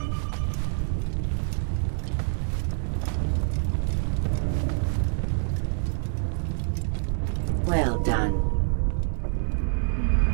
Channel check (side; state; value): left; silent; 60 dB below the other